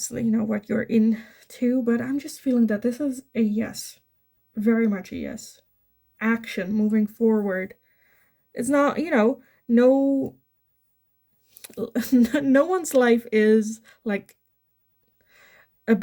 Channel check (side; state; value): both; identical; correlation 1.00